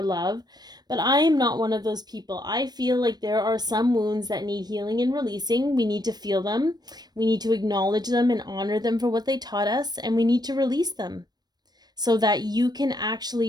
love. But I am not one of those people. I feel like there are some wounds that need healing and releasing. We need to feel them. We need to acknowledge them and honor them for what they taught us, and we need to release them, so that you can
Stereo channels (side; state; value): left; late; 0.19 ms